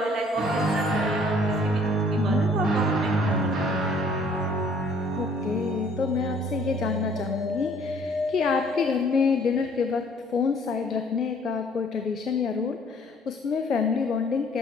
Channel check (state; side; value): normal; both; correlation 0.58